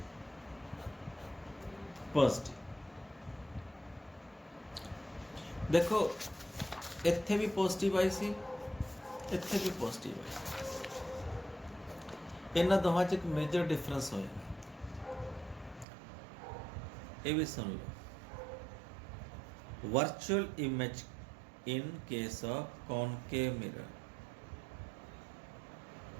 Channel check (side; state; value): left; drops out; at 15.9 s